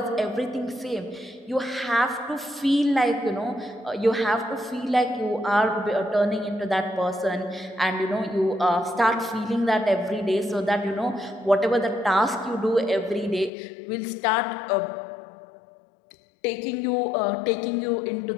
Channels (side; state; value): right; drops out; at 13.5 s